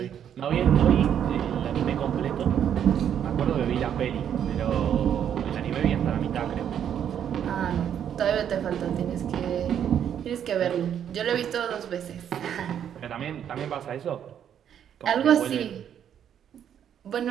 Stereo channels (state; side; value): quieter; left; 9.2 dB